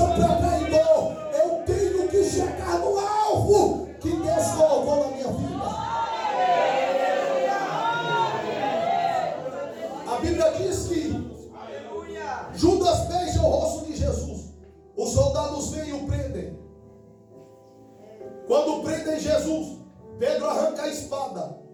para traidor. Eu tenho que chegar no alvo que Deus colocou na minha vida. A Bíblia diz que Judas beija o rosto de Jesus. Os soldados vêm e o prendem. Quando prendem Jesus, Pedro arranca a espada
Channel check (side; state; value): both; identical; correlation 1.00